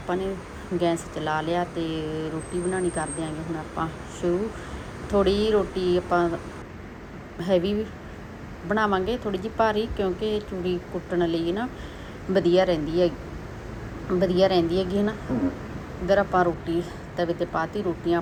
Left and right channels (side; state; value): both; identical; correlation 1.00